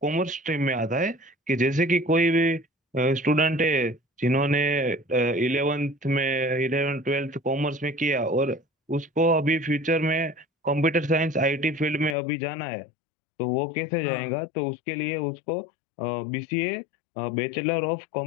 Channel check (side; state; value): right; drops out; at 12.2 s